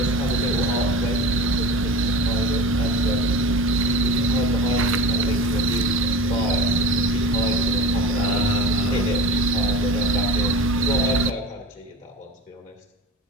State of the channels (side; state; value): both; normal; correlation 0.33